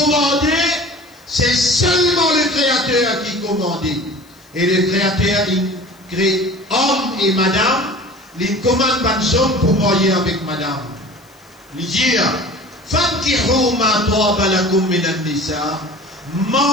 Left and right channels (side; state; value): left; noise; hiss, 29 dB below the sound